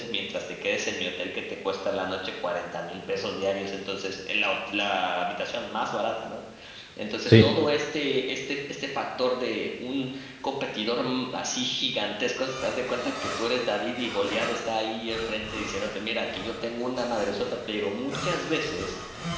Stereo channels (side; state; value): both; identical; correlation 1.00